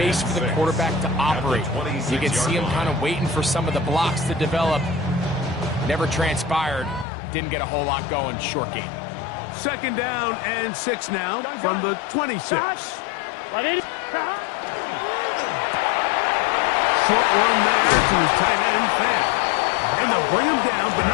for the quarterback to operate. You can see him kind of waiting for some of the blocks to develop. Never transpired. Didn't get a whole lot going. Short game. Second down and 6 now from the 26. Short one there to his tight end, Fan. And they'll bring him down, but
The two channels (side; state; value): right; drops out; at 7.1 s